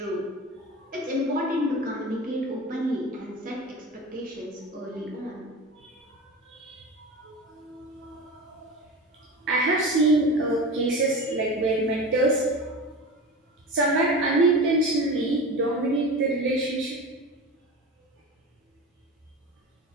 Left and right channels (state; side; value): normal; both; correlation 0.31